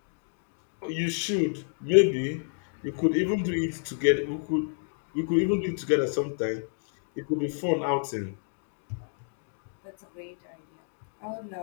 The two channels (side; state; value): right; silent; digital silence